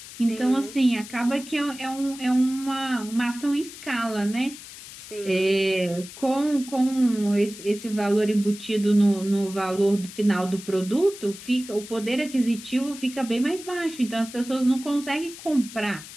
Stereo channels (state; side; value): noise; left; hiss, 15 dB below the sound